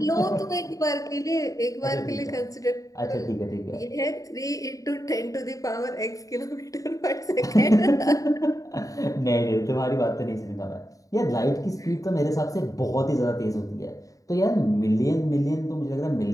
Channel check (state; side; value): late; right; 0.16 ms